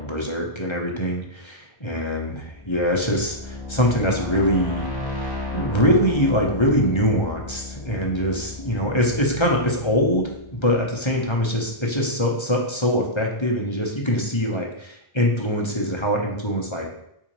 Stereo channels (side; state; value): right; late; 1.3 ms